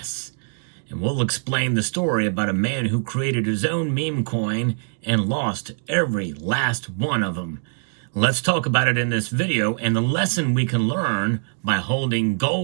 And we'll explain the story about a man who created his own meme coin and lost every last one of them. Let's talk about it in this video and the lesson we can learn by holding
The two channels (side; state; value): left; silent; digital silence